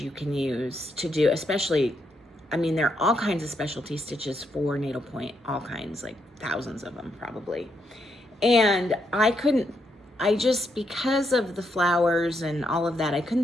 you can use to do, especially, I mean, there are all kinds of specialty stitches for needlepoint, all kinds, like thousands of them probably. And because of the flowers and all of that, I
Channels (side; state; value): both; normal; correlation 0.78